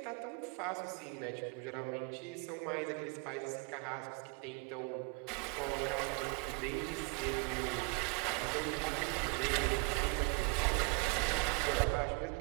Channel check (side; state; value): left; quieter; 29.8 dB